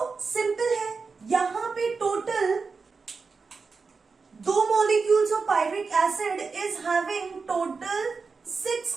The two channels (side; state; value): left; quieter; 4.7 dB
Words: simple है, यहां पे total 2 molecules of pyruvic acid is having total 6